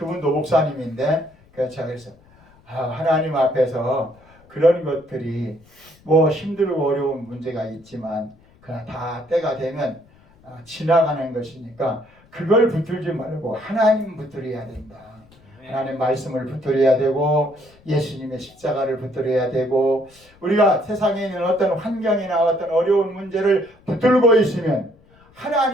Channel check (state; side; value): noise; left; rumble, 28 dB below the sound